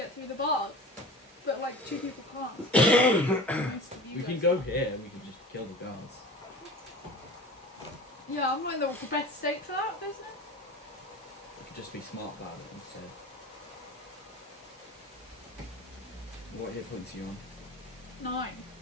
through the bars. But like 2 people can't. We can go here. We can just kill the guards. Yeah, I'm not in the best state for that, isn't it? We could just be smart about it instead. What hit points are you on? 9.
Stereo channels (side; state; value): both; normal; correlation 0.37